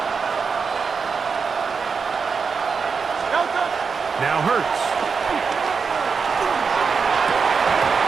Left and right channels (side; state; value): left; quieter; 5.4 dB